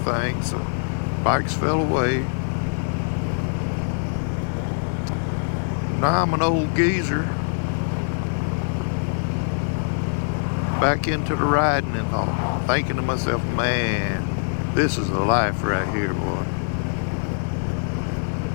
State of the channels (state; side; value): silent; right; digital silence